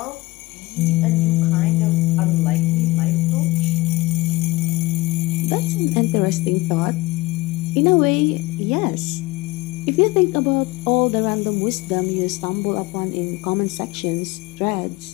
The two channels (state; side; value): quieter; right; 20.6 dB